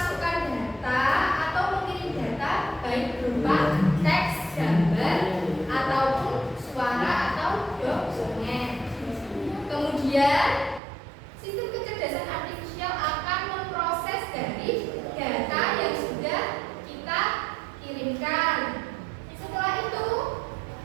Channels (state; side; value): drops out; left; at 10.8 s